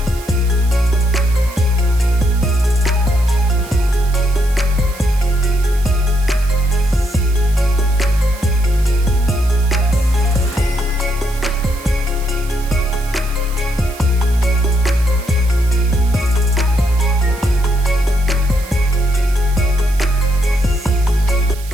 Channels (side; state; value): right; noise; hiss, 18 dB below the sound